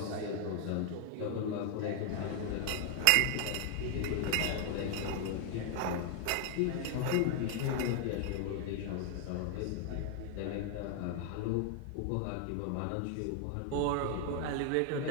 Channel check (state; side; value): different; both; correlation 0.00